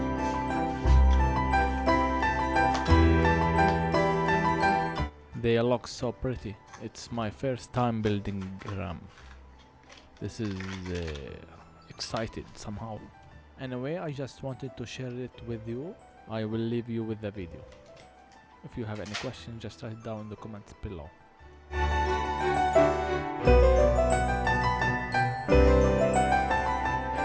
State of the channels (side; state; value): both; identical; correlation 1.00